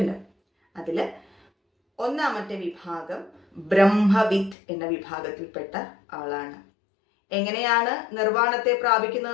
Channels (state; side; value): drops out; right; at 4.5 s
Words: അതിൽ ഒന്നാമത്തെ വിഭാഗം ബ്രഹ്മവിത്ത് എന്ന വിഭാഗത്തിൽപ്പെട്ട ആളാണ്. എങ്ങനെയാണ് നിർവ്വാണത്തെ